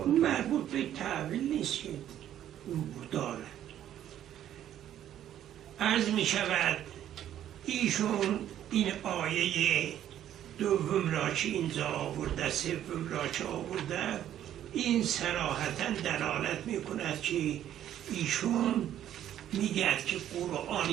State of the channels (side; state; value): left; quieter; 11.2 dB